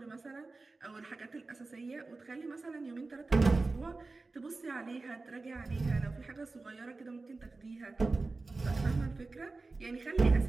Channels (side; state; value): left; quieter; 3.6 dB